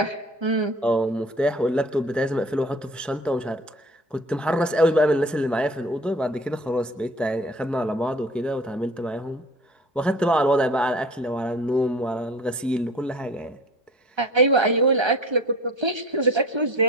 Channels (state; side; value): normal; both; correlation 0.43